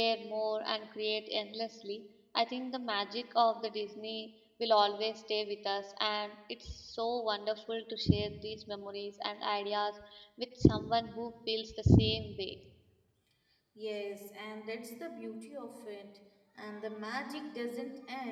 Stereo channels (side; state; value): both; identical; correlation 1.00